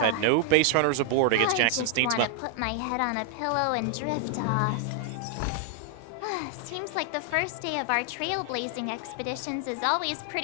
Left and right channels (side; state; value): both; different; correlation 0.00